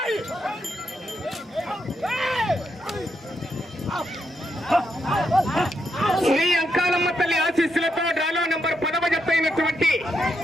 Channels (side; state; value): both; normal; correlation 0.81